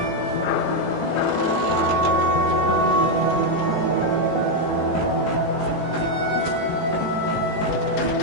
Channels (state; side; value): late; right; 18 ms